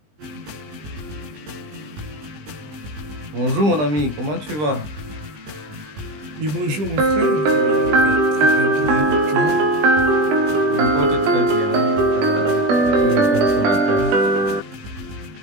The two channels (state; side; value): late; left; 20 ms